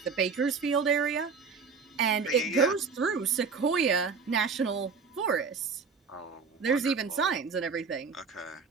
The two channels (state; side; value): quieter; left; 5.3 dB